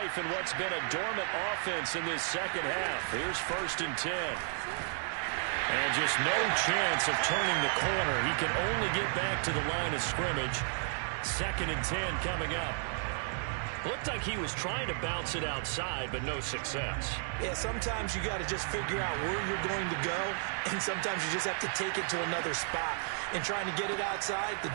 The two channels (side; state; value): left; silent; 56 dB below the other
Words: in what's been a dormant offense in this second half. Here's 1st and 10. And just no chance of turning the corner. He can only get back to the line of scrimmage. 2nd and 10 coming up. Looked like he was trying to bounce it outside, but no success. Yeah, sometimes you got to just figure out where you're going to go, and sometimes you just have to take it to another spot. And trying to get it outside, the